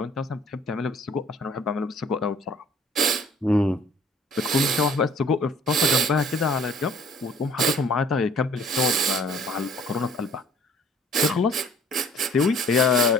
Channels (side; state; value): both; normal; correlation 0.55